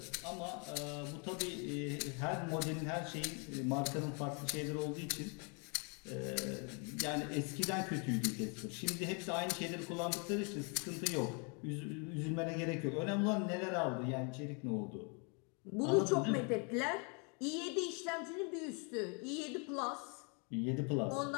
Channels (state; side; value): quieter; right; 35.9 dB